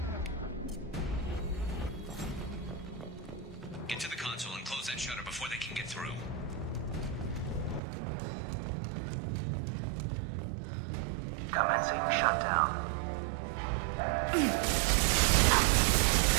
Get to the console and close that shutter before they can get through. Commencing shutdown.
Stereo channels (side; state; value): left; drops out; at 7.8 s